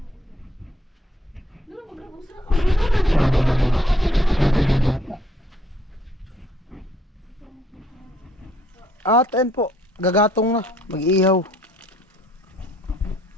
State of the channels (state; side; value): normal; both; correlation 0.66